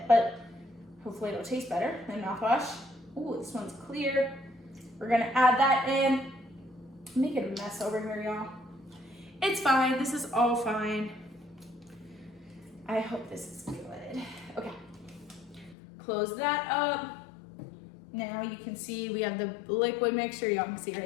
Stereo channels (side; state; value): right; drops out; at 15.8 s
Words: but hopefully it'll taste better than mouthwash. Ooh, this one's clear. We're gonna add that in. Make it a mess over here, y'all. It's fine, this is all fine. I hope this is good. Okay, close that up. Now you can see we have the liquid mixture, y'all can see